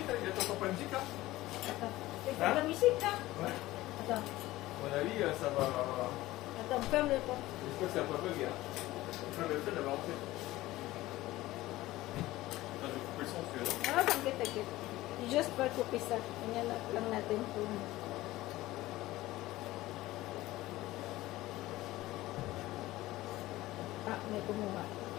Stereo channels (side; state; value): right; quieter; 17.3 dB